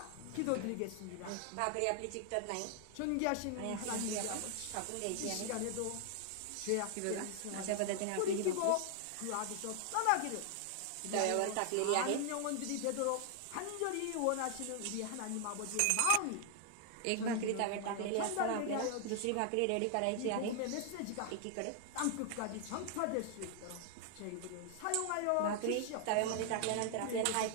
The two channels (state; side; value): different; both; correlation 0.00